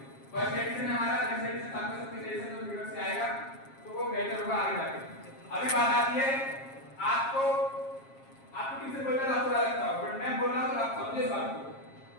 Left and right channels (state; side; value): late; right; 7.4 ms